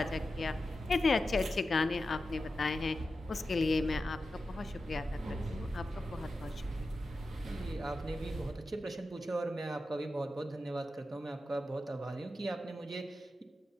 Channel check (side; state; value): both; normal; correlation 0.91